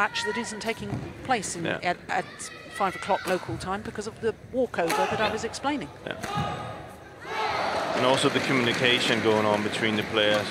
that isn't taking place at 5 o'clock local time because of the walkover that I was explaining. Yeah. And also the communication going on between the players.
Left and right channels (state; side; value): identical; both; correlation 1.00